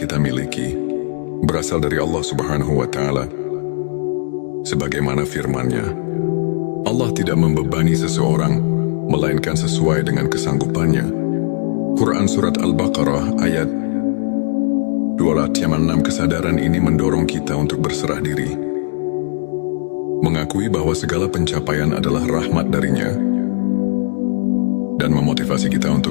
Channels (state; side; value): silent; right; 67 dB below the other